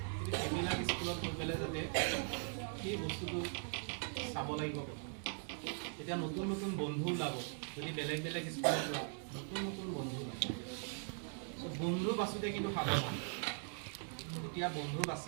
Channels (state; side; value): silent; left; 51 dB below the other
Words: কিন্তু সেইবিলাক স্কুলত গৈ পেলাই যাতে সেই বস্তুটো চাব লাগিব। এতিয়া নতুন নতুন বন্ধু ওলাব, যদি বেলেগ বেলেগ স্কুলৰ পৰা নতুন নতুন বন্ধু ওলাব। বন্ধু বাছোঁতে কিন্তু সাৱধান, এতিয়া বন্ধু